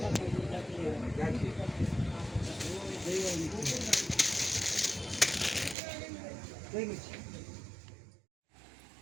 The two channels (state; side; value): drops out; left; at 5.8 s